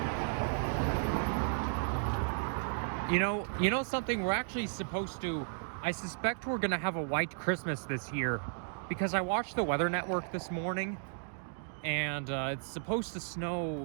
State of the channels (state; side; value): silent; left; digital silence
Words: You know something, we're actually supposed to, I suspect we're gonna have a white Christmas this year because I watched the Weather Network this morning and it's supposed to